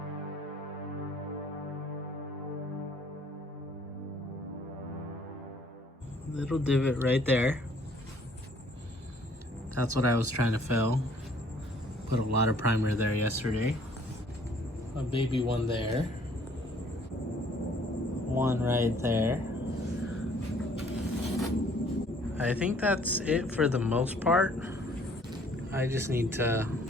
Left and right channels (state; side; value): normal; both; correlation 0.59